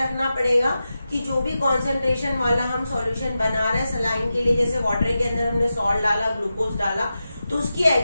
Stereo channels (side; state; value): both; inverted; correlation -0.91